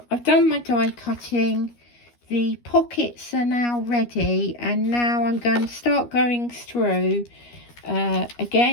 I've done my die cutting. The pockets are now ready, and now I'm going to start going through.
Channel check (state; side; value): late; right; 13 ms